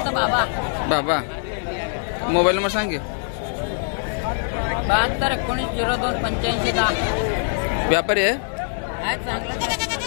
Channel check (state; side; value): silent; right; digital silence